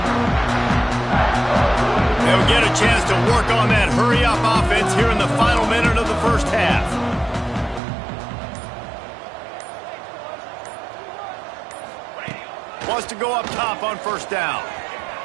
They'll get a chance to work on that hurry-up offense here in the final minute of the first half. Wants to go up top on first down.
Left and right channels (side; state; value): left; drops out; at 7.8 s